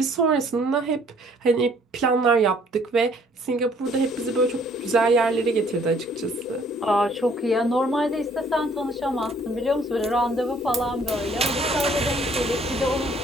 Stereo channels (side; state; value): both; normal; correlation 0.60